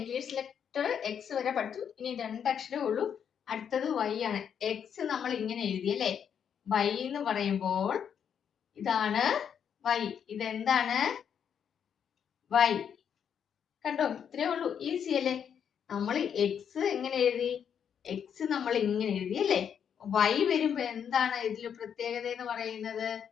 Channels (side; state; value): right; quieter; 8.0 dB